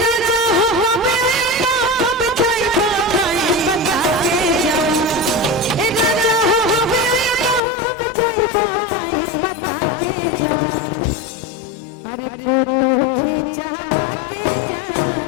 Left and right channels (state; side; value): drops out; right; at 7.6 s